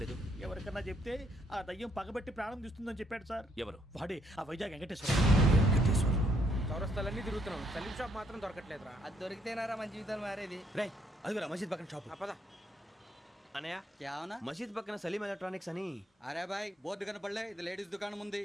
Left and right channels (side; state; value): both; normal; correlation 0.71